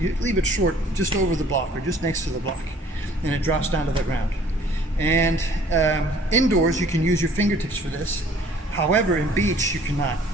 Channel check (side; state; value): both; normal; correlation 0.55